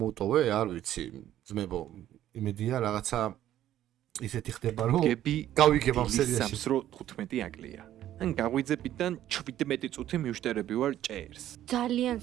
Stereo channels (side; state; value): left; quieter; 12.4 dB